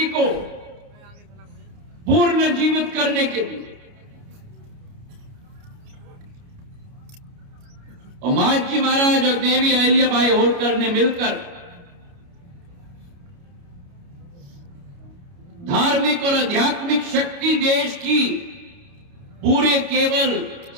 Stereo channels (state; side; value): late; left; 29 ms